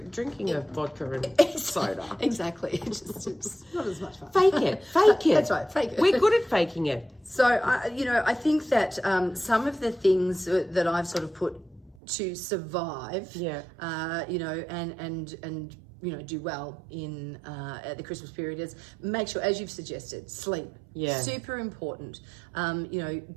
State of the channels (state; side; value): drops out; left; at 12.0 s